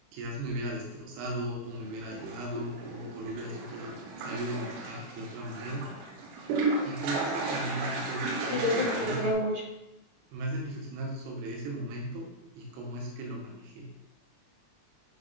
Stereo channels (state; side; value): late; left; 21 ms